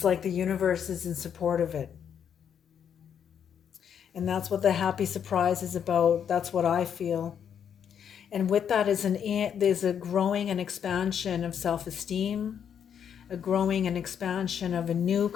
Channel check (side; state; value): right; quieter; 8.3 dB